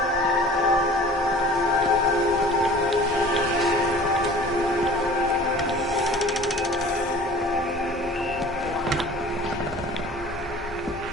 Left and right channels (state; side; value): normal; both; correlation 0.45